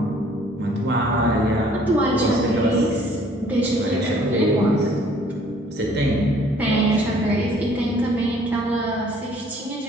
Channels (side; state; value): both; normal; correlation 0.58